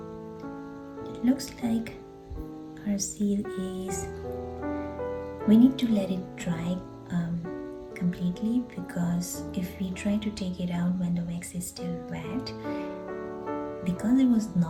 it looks like our seal is, we need to let it dry completely, because if we try to take it out when the wax is still wet, because it was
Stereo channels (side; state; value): both; identical; correlation 1.00